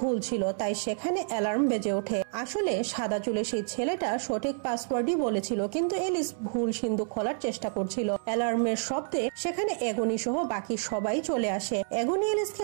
ভুল ছিল, তাই সেখানে অ্যালার্ম বেজে ওঠে। আসলে সাদা চুলের সেই ছেলেটা সঠিক পাসওয়ার্ডই বলেছিল, কিন্তু এলিস ভুল সিন্দুক খোলার চেষ্টা করছিল। অ্যালার্মের শব্দে সেখানে এগনি সহ বাকি সবাই চলে আসে। এগনি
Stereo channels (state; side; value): silent; left; 59 dB below the other